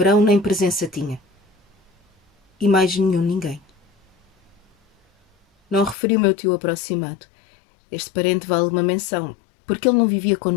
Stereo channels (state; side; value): drops out; right; at 6.0 s